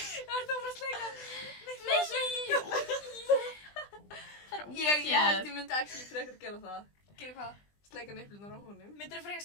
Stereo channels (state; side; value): late; right; 20 ms